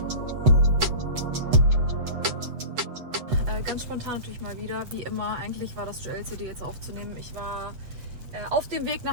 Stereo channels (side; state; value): left; late; 8.2 ms